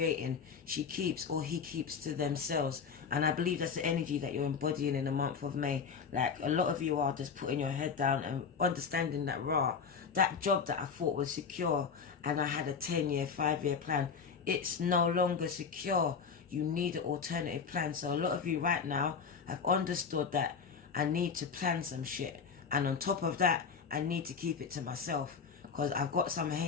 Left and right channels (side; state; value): right; quieter; 6.0 dB